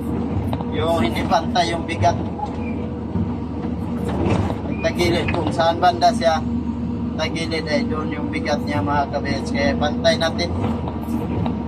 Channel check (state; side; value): identical; both; correlation 1.00